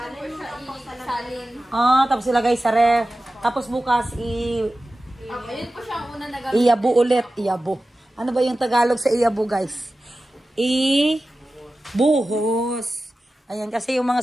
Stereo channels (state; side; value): normal; both; correlation 0.95